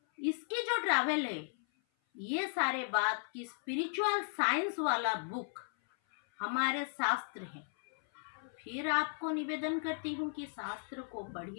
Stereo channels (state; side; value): silent; right; 54 dB below the other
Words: इसकी जो ट्रैवल है, ये सारे बात की स्पिरिचुअल साइंस वाला बुक हमारे शास्त्र हैं। फिर आपको निवेदन करती हूँ कि शास्त्र को